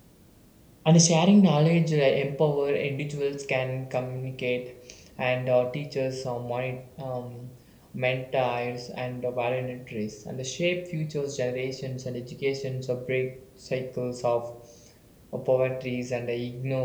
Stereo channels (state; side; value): identical; both; correlation 1.00